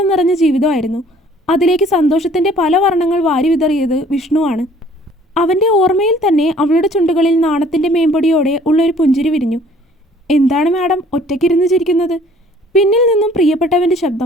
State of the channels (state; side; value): normal; both; correlation 0.56